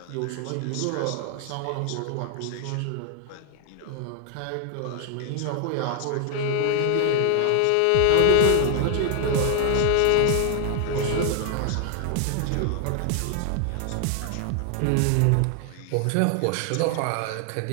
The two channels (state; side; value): different; both; correlation 0.00